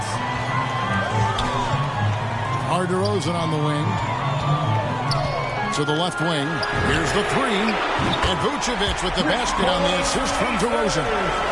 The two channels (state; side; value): identical; both; correlation 1.00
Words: DeRozan on the wing. To the left wing. Here's the 3. And Vucevic with the basket on the assist from DeRozan.